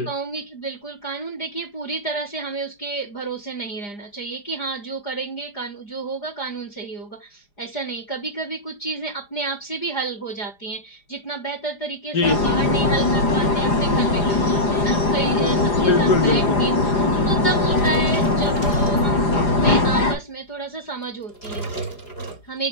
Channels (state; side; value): late; right; 4.9 ms